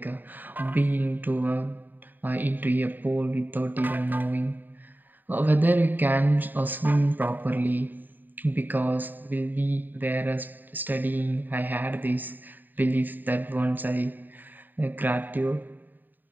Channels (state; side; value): late; left; 0.089 ms